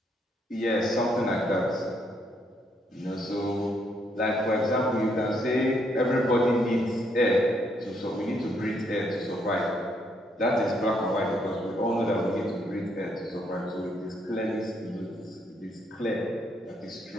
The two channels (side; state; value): both; normal; correlation 0.73